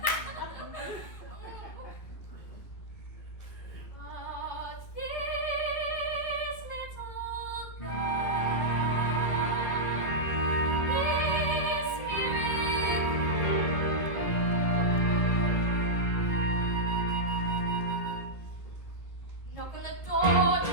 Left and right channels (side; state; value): right; late; 1.9 ms